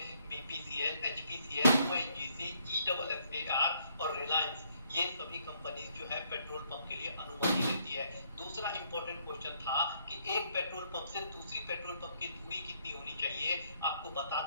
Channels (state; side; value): inverted; both; correlation -0.70